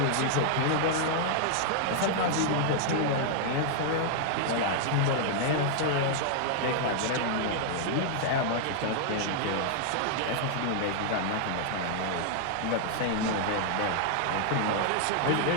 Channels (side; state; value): both; different; correlation -0.01